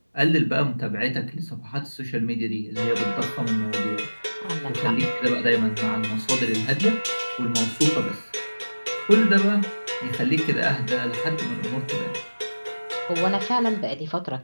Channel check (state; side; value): inverted; both; correlation -1.00